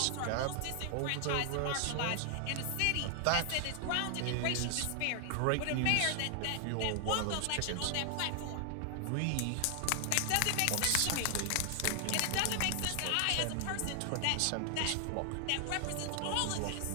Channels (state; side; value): different; both; correlation 0.00